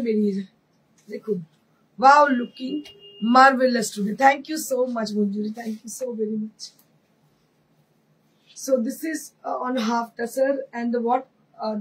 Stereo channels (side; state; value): both; identical; correlation 1.00